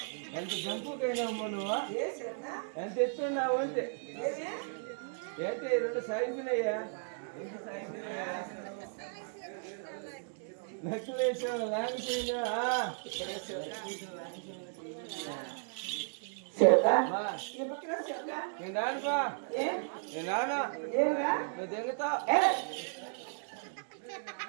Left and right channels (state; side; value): silent; left; digital silence